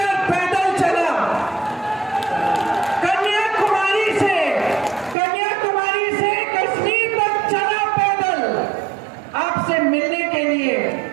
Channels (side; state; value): left; drops out; at 5.2 s